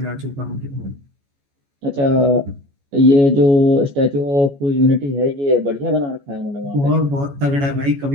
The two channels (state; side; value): late; left; 14 ms